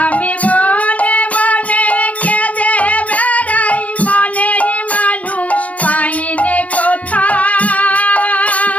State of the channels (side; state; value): right; late; 0.069 ms